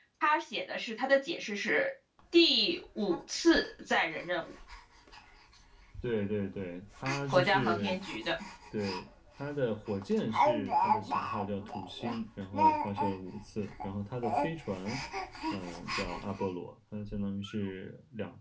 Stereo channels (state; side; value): identical; both; correlation 1.00